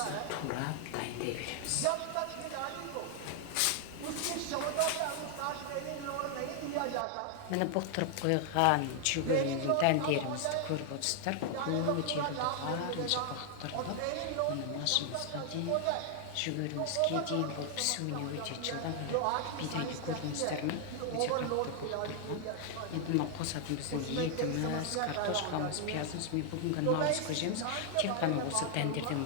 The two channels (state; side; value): different; both; correlation 0.00